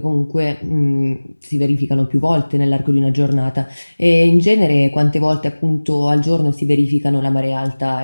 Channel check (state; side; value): inverted; both; correlation -1.00